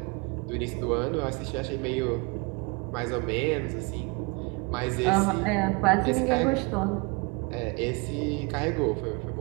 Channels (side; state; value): left; quieter; 29.1 dB